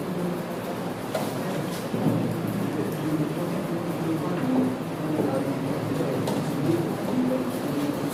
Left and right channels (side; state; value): both; identical; correlation 1.00